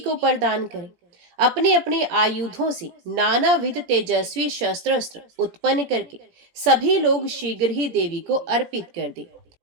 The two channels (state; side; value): late; left; 17 ms